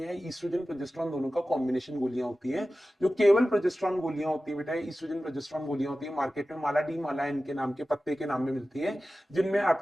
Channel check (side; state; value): both; normal; correlation 0.95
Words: हैं, ईस्ट्रोजन प्रोजेस्टेरॉन दोनों का कॉम्बिनेशन गोलियां होती हैं। जो केवल प्रोजेस्टेरॉन गोलियां होती है बेटा, ईस्ट्रोजन प्रोजेस्टेरॉन गोलियां होती है, मार्केट में माला डी माला इनके नाम के पत्ते के नाम में मिलती है, जिनमें